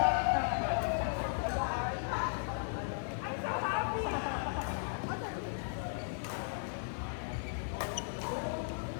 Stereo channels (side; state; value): right; silent; digital silence